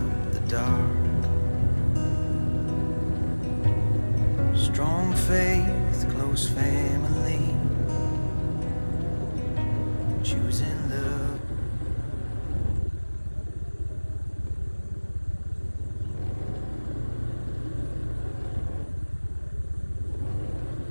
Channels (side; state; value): both; inverted; correlation -1.00